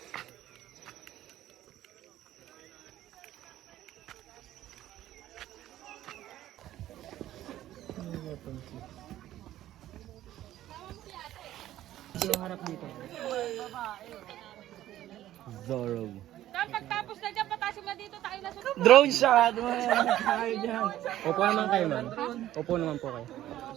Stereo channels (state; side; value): quieter; left; 13.5 dB